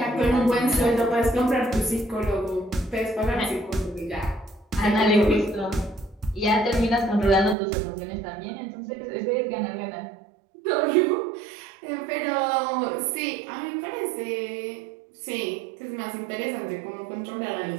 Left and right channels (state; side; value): drops out; left; at 7.6 s